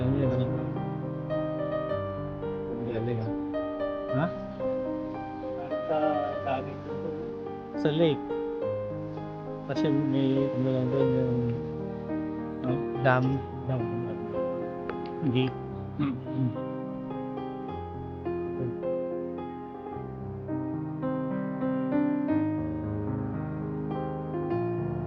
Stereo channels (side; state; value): both; identical; correlation 1.00